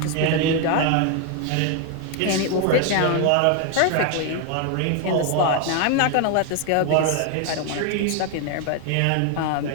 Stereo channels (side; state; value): both; different; correlation 0.01